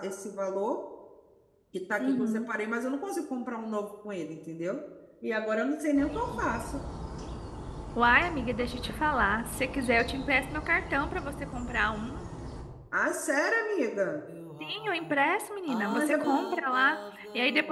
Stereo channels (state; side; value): identical; both; correlation 1.00